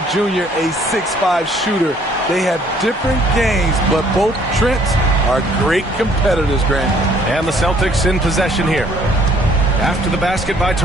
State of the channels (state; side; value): normal; both; correlation 0.61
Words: Jr. a 6'5 shooter. They have different games, but both Trents are great competitors, Grant. And the Celtics in possession here. After the basket by